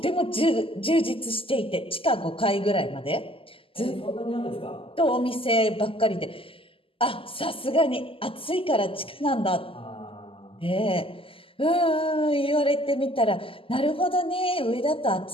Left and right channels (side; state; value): right; late; 0.26 ms